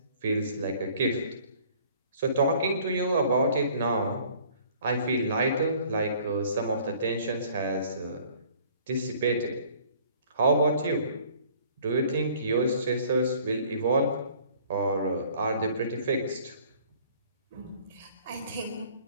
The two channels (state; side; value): inverted; both; correlation -0.54